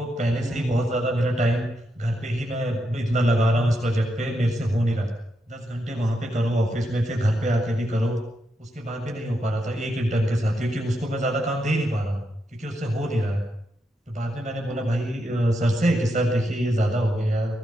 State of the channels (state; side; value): normal; both; correlation 0.83